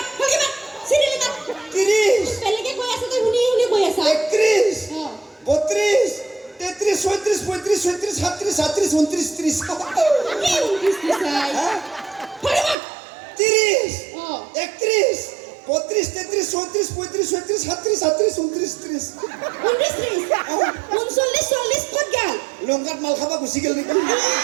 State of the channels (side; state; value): left; drops out; at 12.8 s